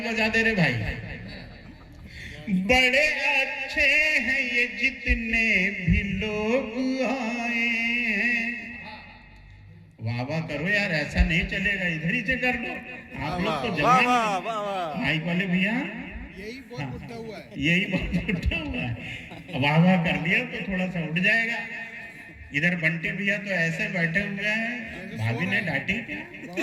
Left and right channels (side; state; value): both; identical; correlation 1.00